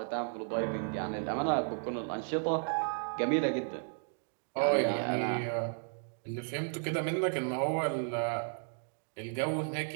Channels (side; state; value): left; silent; 55 dB below the other